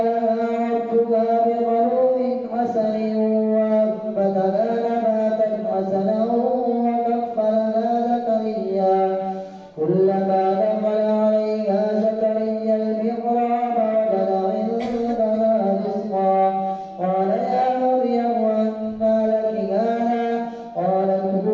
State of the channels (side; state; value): both; identical; correlation 1.00